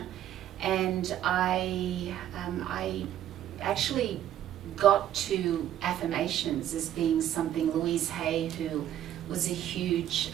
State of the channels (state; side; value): quieter; left; 11.7 dB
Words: and I actually got to affirmations as being something. Louise Hay, who was a huge